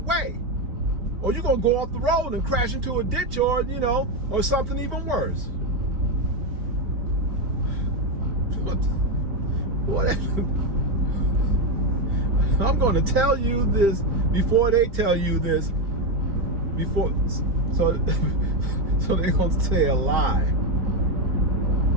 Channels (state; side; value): late; left; 4.3 ms